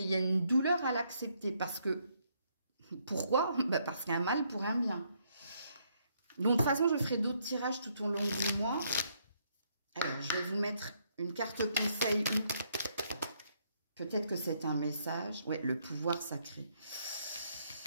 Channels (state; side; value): inverted; both; correlation -0.72